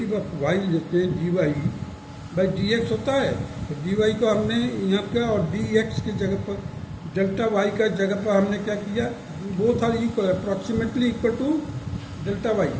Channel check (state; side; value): identical; both; correlation 1.00